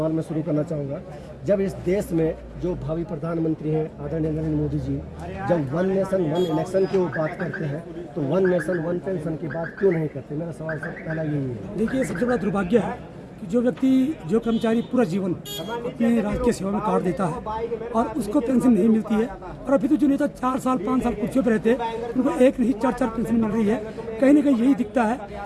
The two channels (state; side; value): identical; both; correlation 1.00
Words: मैं शुरू करना चाहूँगा, जब इस देश में जो भावी प्रधानमंत्री हैं आदरणीय नरेंद्र मोदी जी, जब 1 नेशन 1 इलेक्शन की वो बात करते हैं तो 1 नेशन 1 पेंशन की बात क्यों नहीं करते? मेरा सवाल सर पहला यही है। देखिए, सबसे बड़ा दुर्भाग्य है कि जो व्यक्ति जो कर्मचारी पूरा जीवन अपने राष्ट्रीय सेवा में काट देता है और उसको पेंशन नहीं मिलती है, और अभी तो जो नेता 4 साल 5 साल कुर्सियों पर रहते हैं उनको एक नहीं 4 पेंशन मिल रही है। कहीं ना कहीं यही दिखता है